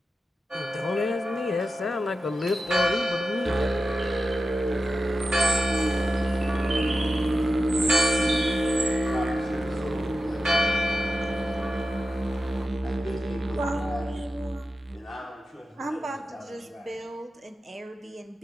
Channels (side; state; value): both; normal; correlation 0.92